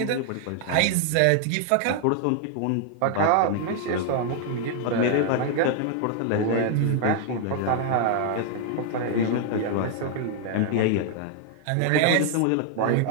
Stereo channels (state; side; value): different; both; correlation 0.00